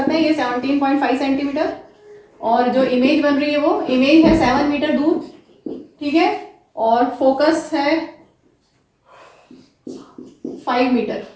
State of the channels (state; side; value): identical; both; correlation 1.00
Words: हैं। ये 17.5 सेंटीमीटर और जो इमेज बन रही है वो इमेज है 7 मीटर दूर, ठीक है। और फोकस है 5 मीटर।